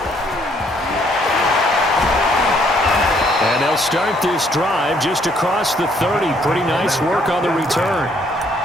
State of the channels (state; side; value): normal; both; correlation 0.66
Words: And they'll start this drive just across the 30. Pretty nice work on the return.